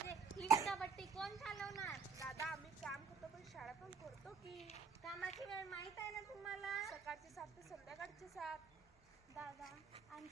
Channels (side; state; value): left; quieter; 5.1 dB